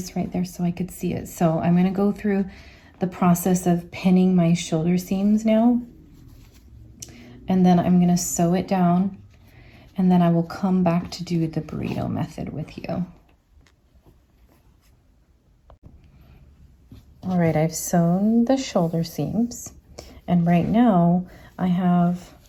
right there so I could see it. So I'm gonna go through the process of pinning my shoulder seams now, and then I'm gonna sew it down, and then I will come back to do the burrito method with you. All right, I've sewn the shoulder seams, and right now I have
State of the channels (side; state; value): both; identical; correlation 1.00